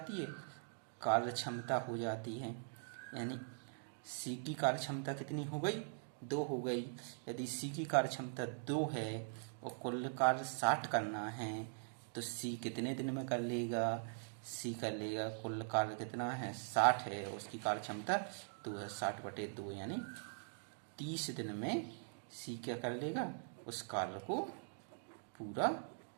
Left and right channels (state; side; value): silent; left; digital silence